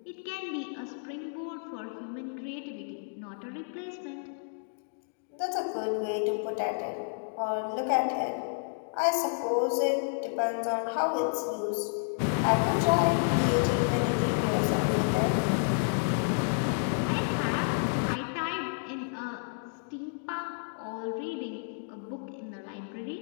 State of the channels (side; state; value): right; silent; digital silence